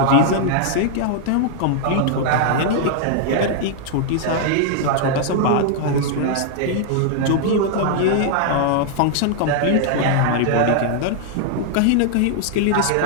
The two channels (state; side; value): different; both; correlation -0.01